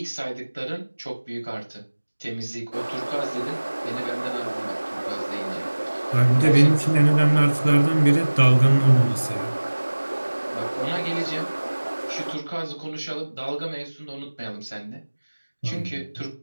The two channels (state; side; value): inverted; both; correlation -1.00